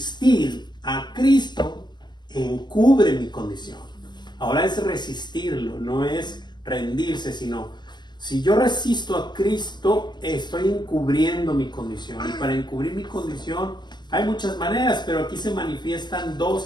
a Cristo encubre mi condición. Ahora es resistirlo, no es rendirse, sino si yo resisto a Cristo, estoy encubriendo mi condición. Y para encubrir mi condición hay muchas maneras, pero aquí se manifiestan dos,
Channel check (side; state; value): right; late; 0.21 ms